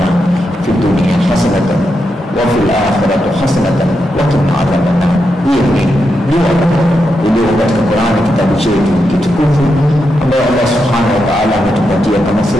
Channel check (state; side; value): normal; both; correlation 0.85